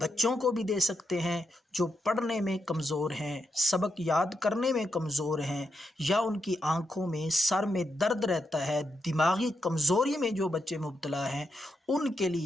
बच्चों को भी दे सकते हैं जो पढ़ने में कमज़ोर हैं, सबक याद करने में कमज़ोर हैं, या उनकी आँखों में सर में दर्द रहता है, दिमागी कमज़ोरी में जो बच्चे मुब्तला हैं, उनके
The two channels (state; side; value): normal; both; correlation 0.83